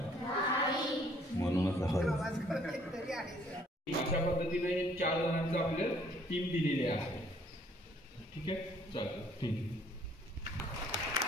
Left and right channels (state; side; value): normal; both; correlation 0.62